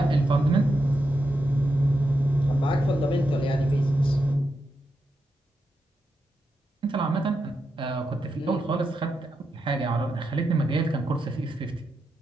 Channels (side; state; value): both; normal; correlation 0.85